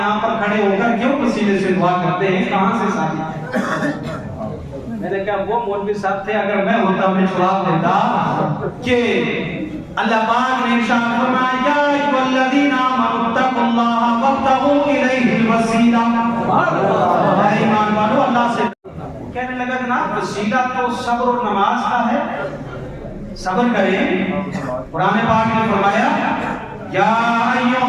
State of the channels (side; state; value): both; identical; correlation 1.00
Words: پر کھڑے ہو کر کیوں پسینے سے دعا کرتے ہیں، کہاں سے ساتھی؟ میں نے کہا وہ مولوی صاحب تھے، اگر میں ہوتا میں جواب دیتا کہ اللہ پاک نے ارشاد فرمایا یا ایھا الذین آمنوا اتقوا اللہ وابتغوا الیہ الوسیلہ، اے ایمان والو اللہ سے کہنے لگا جناب وسیلہ تو صبر و نماز کا ہے، صبر کریں۔ قرآن پاک نے فرمایا یا ایھا